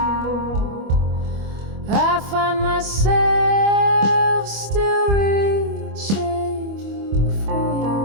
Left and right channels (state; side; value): late; left; 25 ms